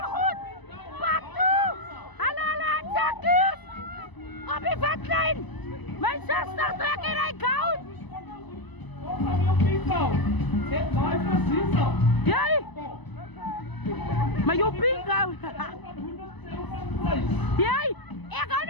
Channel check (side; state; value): right; late; 1.0 ms